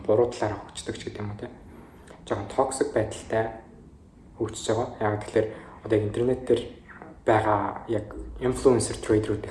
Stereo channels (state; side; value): identical; both; correlation 1.00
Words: буруу талаараа хөгждөг ч гэдэг юм уу те. Жоохон toxic байдалтай хөгжиж байгаа. Яг тэгэхээр одоо интернет дээр байгаа яг influencer